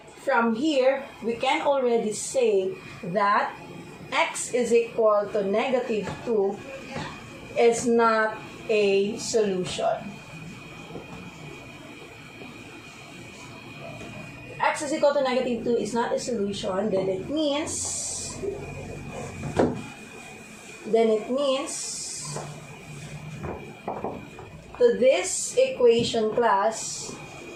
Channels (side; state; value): both; identical; correlation 1.00